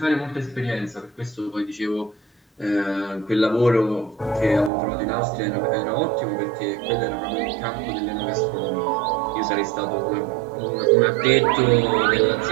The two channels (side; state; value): left; drops out; at 4.7 s